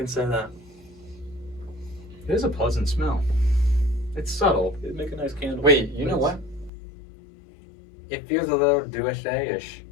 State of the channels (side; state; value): right; drops out; at 6.7 s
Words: say that. It is a pleasant smell. It's subtle. It'd make a nice candle. Wait, you know what? It feels a little USA-ish.